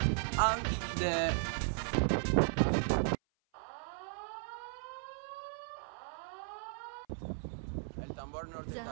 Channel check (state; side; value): silent; left; 53 dB below the other